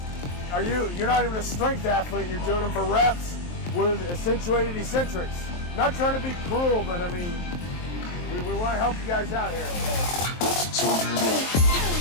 you're not even a strength athlete, you're doing them for reps with accentuated eccentrics. Not trying to be cruel, but I mean, we want to help you guys out here.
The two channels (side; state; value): right; late; 23 ms